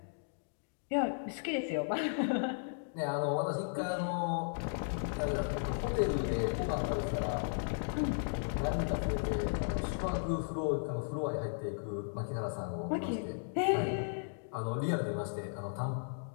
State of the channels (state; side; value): silent; right; digital silence